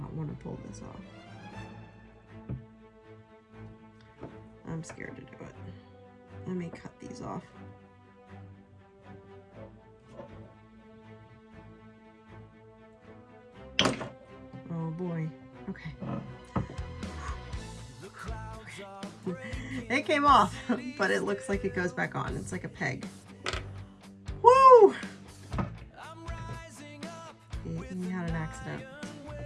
Pull this off. I'm scared to do it. Let me cut these off. Oh boy. Okay. It came off, but it looks like it goes back on. It's like a peg. Woo! You had an accident.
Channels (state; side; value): identical; both; correlation 1.00